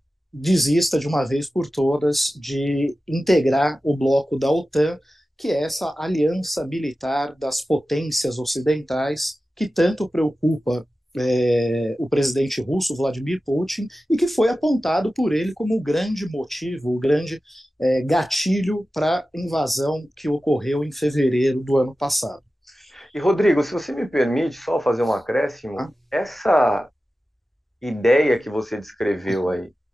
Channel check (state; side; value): normal; both; correlation 0.94